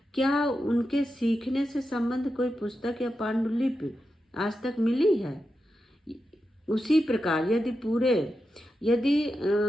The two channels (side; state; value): both; normal; correlation 0.89